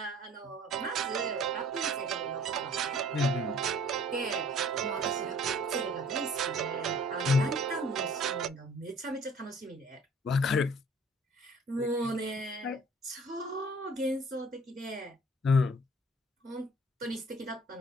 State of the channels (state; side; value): normal; both; correlation 0.52